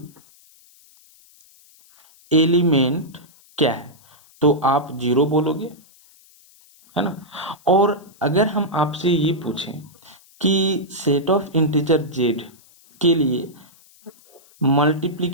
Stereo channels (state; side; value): noise; left; hiss, 28 dB below the sound